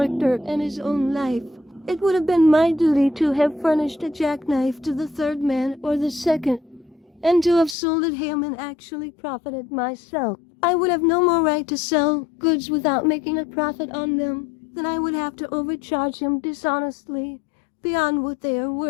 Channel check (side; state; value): right; drops out; at 7.8 s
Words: and his own life. It would have been my duty to have furnished a jackknife to the third man or the second, and to have sold at him and actually profited myself. I would have no more right to sell goods without making a profit on them than I would have to overcharge him dishonestly beyond what they are